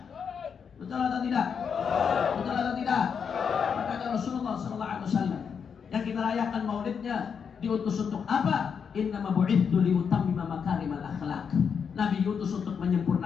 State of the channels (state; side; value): quieter; right; 6.7 dB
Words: Betul atau tidak? Betul atau tidak? Makanya Rasulullah SAW yang kita rayakan maulidnya diutus untuk apa? Innama bu'ithu liutammima makarimal akhlak. Nabi diutus untuk